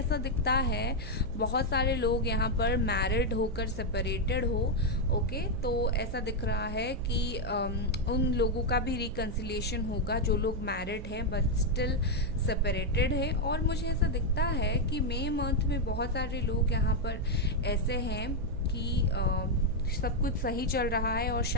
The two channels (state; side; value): noise; right; hum, 10 dB below the sound